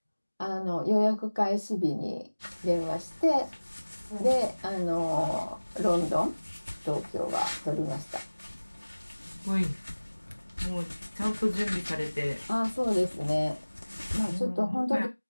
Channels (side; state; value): both; inverted; correlation -1.00